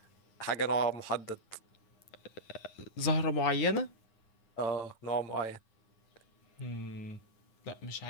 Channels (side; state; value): right; late; 9.7 ms